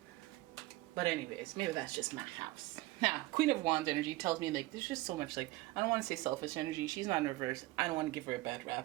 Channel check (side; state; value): left; quieter; 18.8 dB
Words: But anyways, maybe that's just my house. Now, Queen of Wands energy tells me like there's just so much like, I don't want to say selfish energy. She's not in reverse. I don't want to give her a bad